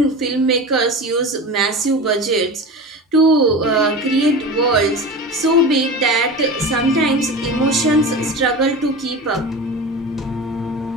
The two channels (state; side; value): normal; both; correlation 0.30